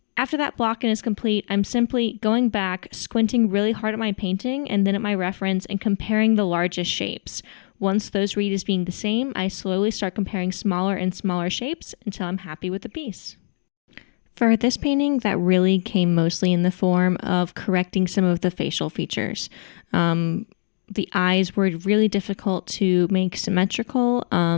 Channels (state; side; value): silent; right; digital silence